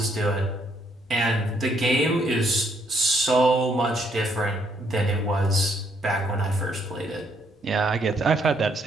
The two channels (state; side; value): normal; both; correlation 0.71